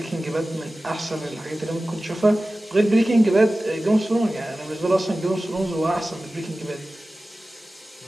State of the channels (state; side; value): normal; both; correlation 0.96